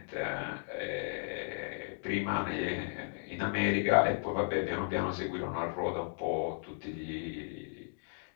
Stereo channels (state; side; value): silent; right; digital silence